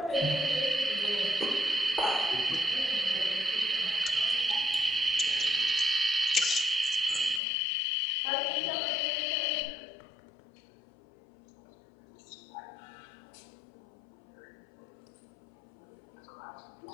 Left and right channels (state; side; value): drops out; right; at 7.4 s